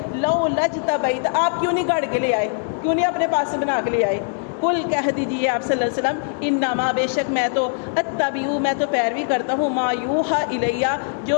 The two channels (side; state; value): right; silent; 62 dB below the other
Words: لو لجتبیت, آپ کیوں نہیں گاڑ کے لے آئے, کیوں نہیں اپنے پاس سے بنا کے لے آئے. قل کہہ دیجیے آپ صلی اللہ علیہ وسلم انما بے شک میں تو اتبعو میں تو پیروی کرتا ہوں ما یوحا الیہ جو